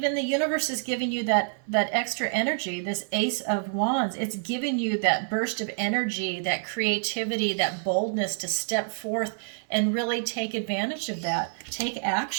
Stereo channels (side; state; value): left; silent; 60 dB below the other